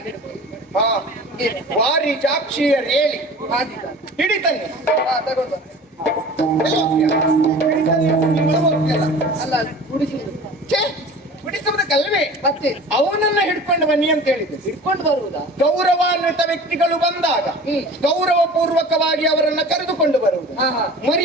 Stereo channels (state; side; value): normal; both; correlation 0.41